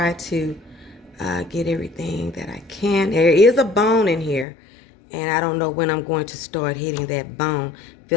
to get everything that I can. There is a bone in here. And I don't know when I'm going to start hitting that bone.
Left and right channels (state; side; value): drops out; right; at 4.5 s